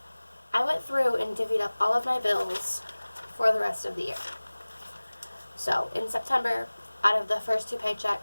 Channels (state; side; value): inverted; both; correlation -1.00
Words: I went through and divvied up all of my bills for the rest of the year. So in September, out of the first 2